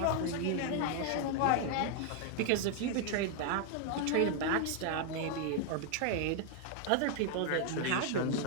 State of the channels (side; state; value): both; different; correlation 0.00